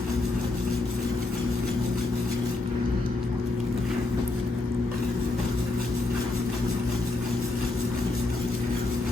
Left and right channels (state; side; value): quieter; right; 3.2 dB